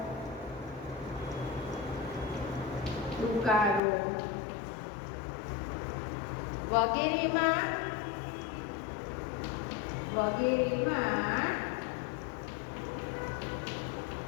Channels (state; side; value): drops out; right; at 3.8 s